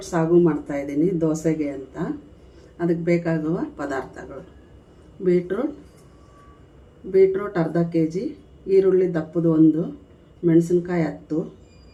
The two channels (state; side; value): identical; both; correlation 1.00